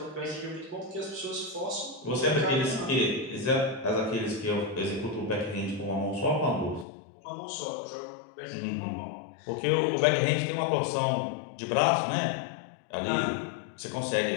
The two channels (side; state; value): right; drops out; at 6.9 s